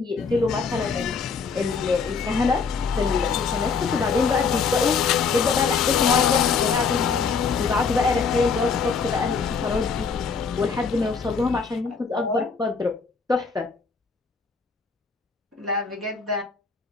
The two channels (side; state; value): right; quieter; 5.2 dB